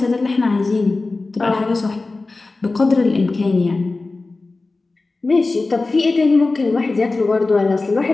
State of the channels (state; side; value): quieter; right; 3.5 dB